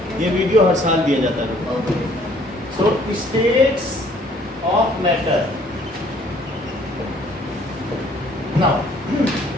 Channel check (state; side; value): normal; both; correlation 0.59